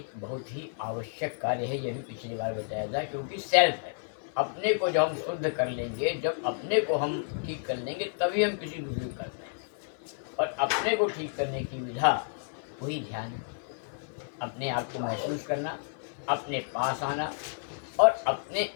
बहुत ही आवश्यक कार्य है। यह भी पिछली बार बताया था, क्योंकि सेल्फ है। अपने को जब हम शुद्ध कर लेंगे, जब अपने को हम ठीक कर लेंगे, तभी हम किसी दूसरे को करते हैं। और अपने को ठीक करने की विधा वही ध्यान है। अपने आप को महसूस करना, अपने पास आना और अपने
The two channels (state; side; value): silent; right; 57 dB below the other